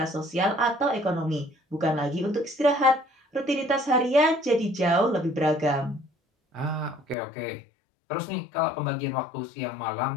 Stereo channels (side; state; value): right; drops out; at 7.2 s